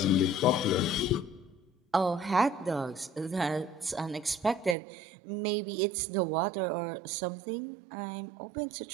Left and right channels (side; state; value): left; drops out; at 4.8 s